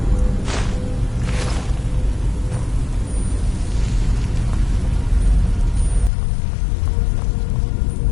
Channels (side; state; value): right; drops out; at 6.1 s